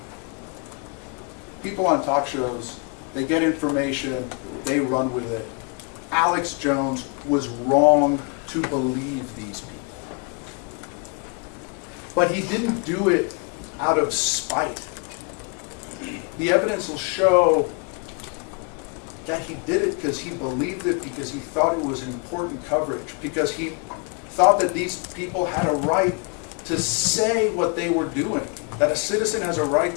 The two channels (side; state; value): right; quieter; 35.6 dB